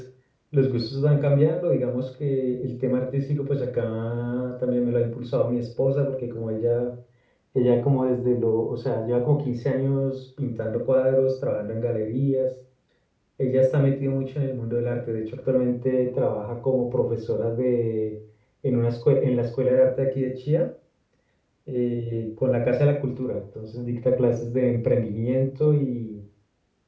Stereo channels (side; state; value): both; identical; correlation 1.00